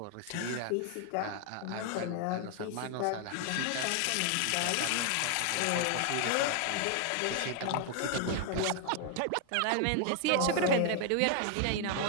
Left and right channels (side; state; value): both; different; correlation 0.00